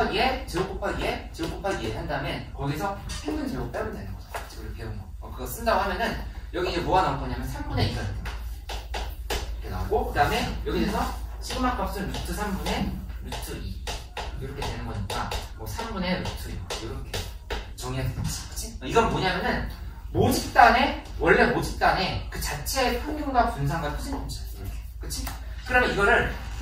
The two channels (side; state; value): both; identical; correlation 1.00